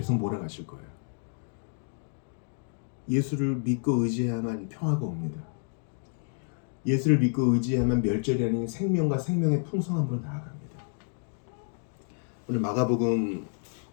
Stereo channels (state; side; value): silent; right; 56 dB below the other